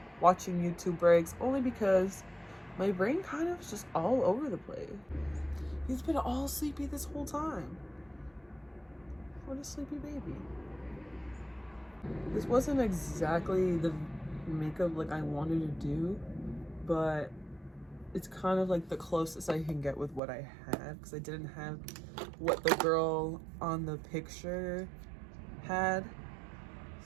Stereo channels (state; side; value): drops out; left; at 20.2 s